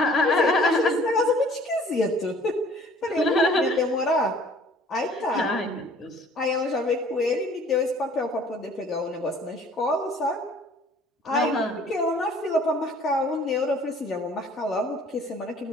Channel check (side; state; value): both; normal; correlation 0.53